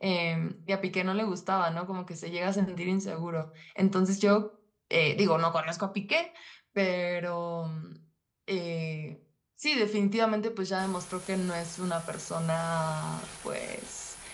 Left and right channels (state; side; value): identical; both; correlation 1.00